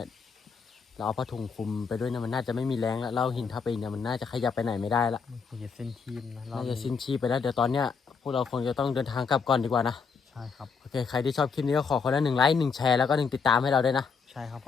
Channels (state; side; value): quieter; right; 5.6 dB